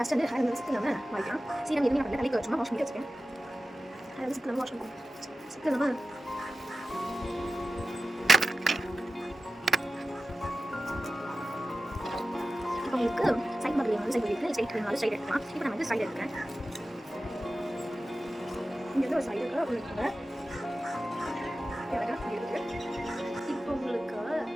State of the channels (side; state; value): both; normal; correlation 0.94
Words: வந்து ஹேர் விசிட் இல்லாமல் வாங்கிக்கலாம். சீரம் எதுவுமே பண்ணல, தலைக்கு வச்சுமா வாஷ் பண்ணி வச்சுக்கேன். ஹேர் விசிட் இல்லாமல் வாஷ் பண்ணுவோம். சிக் இல்லாமல் இப்போ உங்களுக்கு சைட் பக்கத்தில் வந்து சைட் இருக்குது, சைட் வேணுனாலும் சைட் எடுக்கலாம். இப்போ நான் வந்து சைட் எடுக்கிறேன். இங்கே வந்து ஒரு சைடு இருக்குது, உங்களுக்கு இப்போ உங்களுக்கு